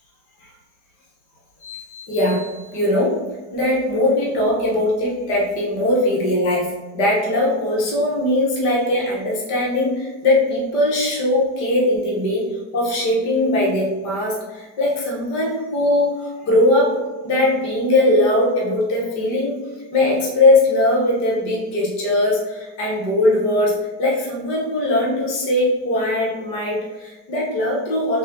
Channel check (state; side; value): late; right; 4.9 ms